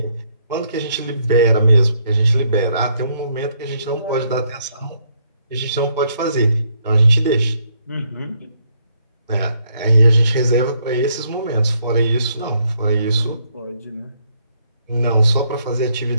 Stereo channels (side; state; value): both; inverted; correlation -0.72